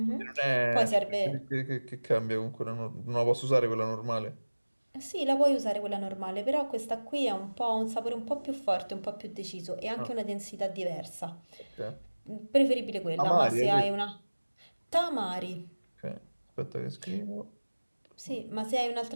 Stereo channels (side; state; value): both; inverted; correlation -1.00